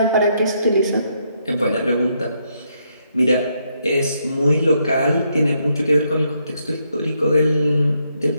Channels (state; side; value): inverted; both; correlation -0.76